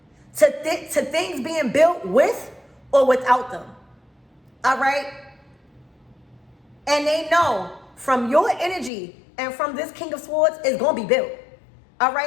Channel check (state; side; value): drops out; right; at 8.9 s